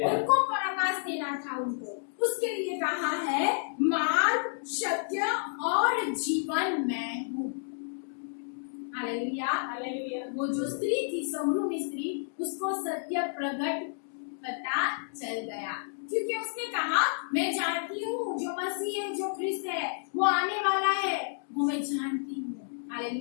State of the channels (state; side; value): silent; right; digital silence